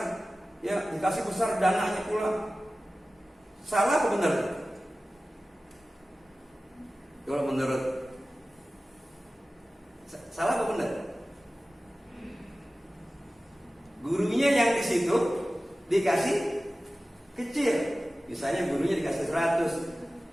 besar dananya pula. Salah apa benar? Kalau menurut salah apa benar? Gurunya yang di situ dikasih kecil, misalnya gurunya dikasih 100,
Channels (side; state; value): both; normal; correlation 0.96